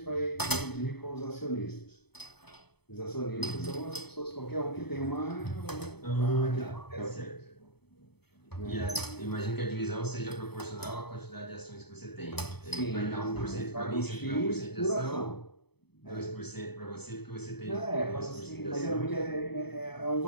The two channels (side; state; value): right; late; 0.98 ms